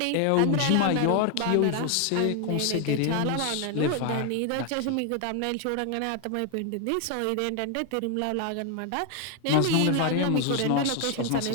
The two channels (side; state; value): both; different; correlation 0.00